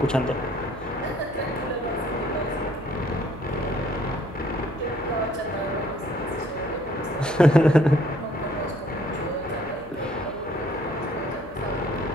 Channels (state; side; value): noise; left; hum, 18 dB below the sound